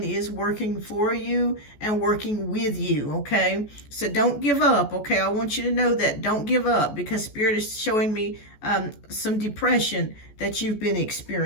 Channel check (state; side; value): late; right; 14 ms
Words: is working for you and working with you, okay? So don't give up, okay? I want you to know that. Don't give up, because Spirit is showing me some depression that you've been